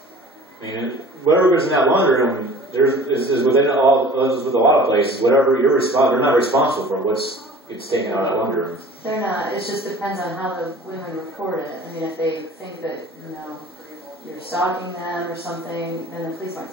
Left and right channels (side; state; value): both; normal; correlation 0.45